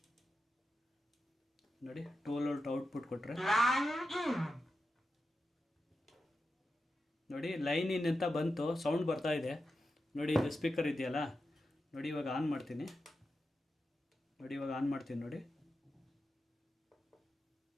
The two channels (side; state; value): both; normal; correlation 0.90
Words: ನೋಡಿ 12 ವೋಲ್ಟ್ ಔಟ್ಪುಟ್ ಕೊಟ್ಟರೆ ನೋಡಿ ಲೈನ್ ಇನ್ ಅಂತ ಬಂತು, ಸೌಂಡ್ ಬರ್ತಾ ಇದೆ. ನೋಡಿ ಇದು ಸ್ಪೀಕರ್ ಇದೆಯಲ್ಲ, ನೋಡಿ ಇವಾಗ ಆನ್ ಮಾಡ್ತೀನಿ. ನೋಡಿ ಇವಾಗ ಆನ್ ಮಾಡ್ತೀನಿ. ನೋಡಿ